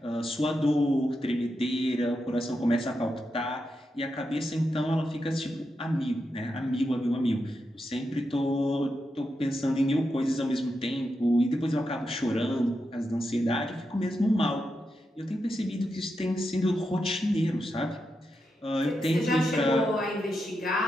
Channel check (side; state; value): both; normal; correlation 0.86